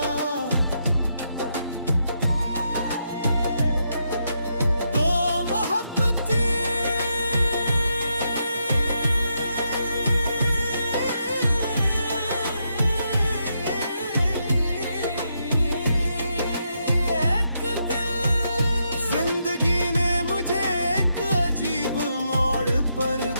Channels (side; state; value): both; inverted; correlation -0.81